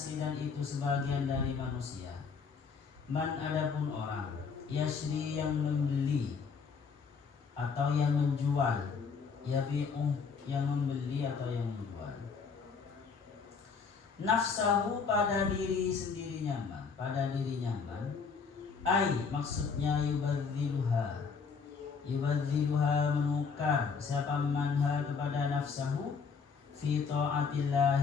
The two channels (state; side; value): quieter; right; 5.5 dB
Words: dan itu sebagian dari manusia. Man, adapun orang, yasri yang membeli atau yang menjual, yabi'u yang membeli atau yang menjual. Nafsahu pada diri sendiri nyaman, pada diri nyaman. Ai maksudnya yubadziluha menukar siapa manha kepada nafsahu fi